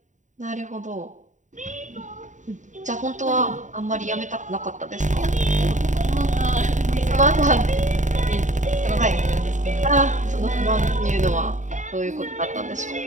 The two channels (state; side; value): late; left; 0.36 ms